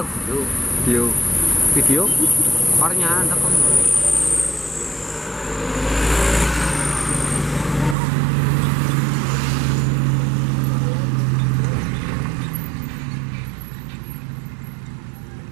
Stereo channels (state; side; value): drops out; left; at 8.0 s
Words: tuh? Video. Video? Warnya ada kan?